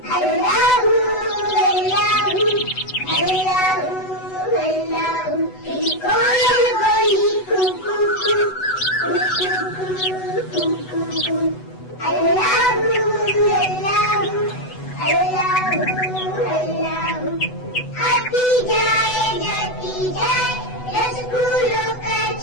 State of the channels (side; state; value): right; late; 8.0 ms